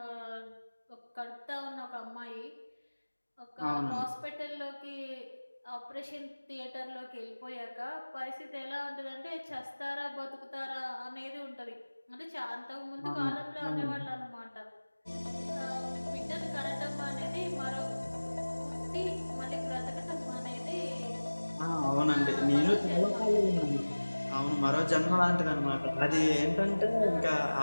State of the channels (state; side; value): inverted; both; correlation -1.00